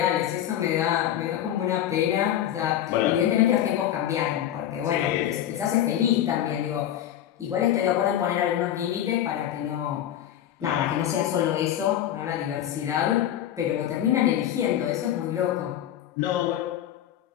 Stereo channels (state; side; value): quieter; right; 11.4 dB